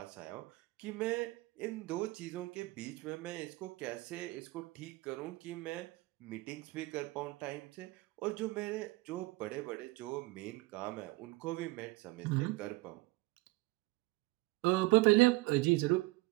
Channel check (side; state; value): left; quieter; 21.3 dB